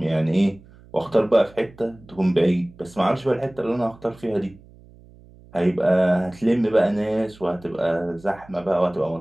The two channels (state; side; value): noise; right; hum, 24 dB below the sound